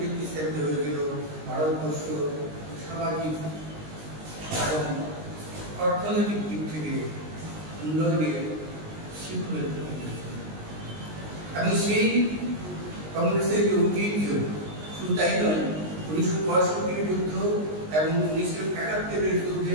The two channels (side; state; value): left; late; 19 ms